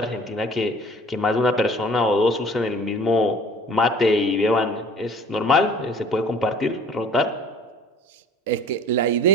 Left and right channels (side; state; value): both; normal; correlation 0.49